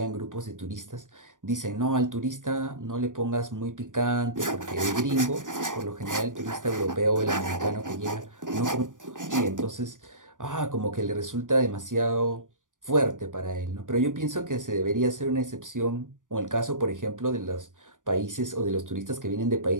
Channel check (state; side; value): late; left; 0.88 ms